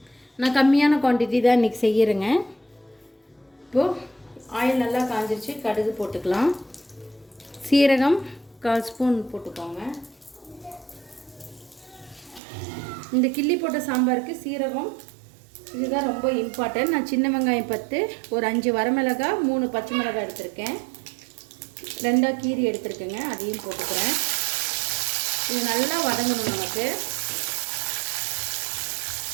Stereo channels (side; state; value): left; drops out; at 12.4 s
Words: நான் கம்மியான குவான்டிட்டி தான் இன்றைக்கி செய்கிறேங்க. இப்போது ஆயில் நல்லா காஞ்சிருச்சு. கடுகு போட்டுக்கலாம். சீரகம் 1/4 ஸ்பூன் போட்டுக்கோங்க. இந்த கிள்ளி போட்ட சாம்பாருக்கு சீரகம் இதுதான் ரொம்ப இம்பார்ட்டன்ட். நான் சின்ன வெங்காயம் 10, ஒரு 5 வரமிளகாய், 3 பச்சை மிளகாய் எடுத்திருக்கேன். 2 கீரி எடுத்துருக்கேங்க, அதையும் போட்டுக்கிறேன். இது நல்லா வதங்கணும் நமக்கு.